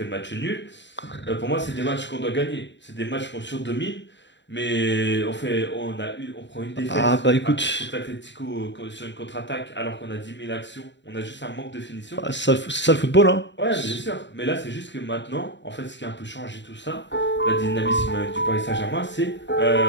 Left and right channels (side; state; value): right; late; 0.52 ms